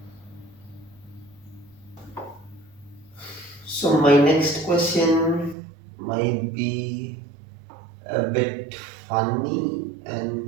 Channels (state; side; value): drops out; left; at 5.6 s